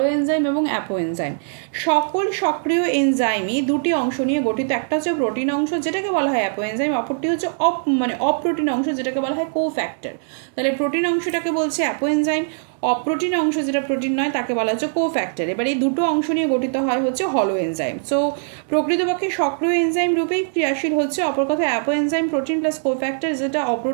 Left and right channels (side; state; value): left; silent; digital silence